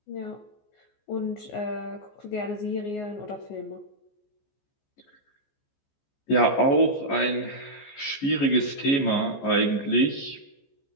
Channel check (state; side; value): late; right; 14 ms